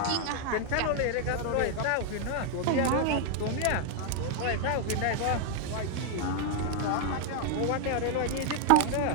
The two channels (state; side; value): different; both; correlation 0.00